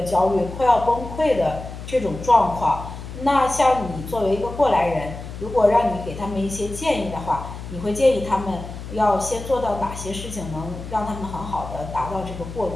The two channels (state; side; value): noise; left; hum, 10 dB below the sound